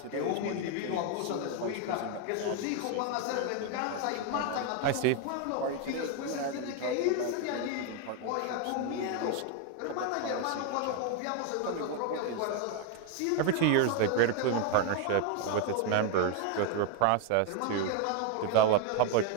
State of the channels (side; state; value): both; different; correlation 0.01